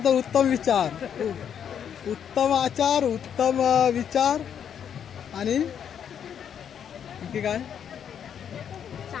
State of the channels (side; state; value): right; quieter; 8.4 dB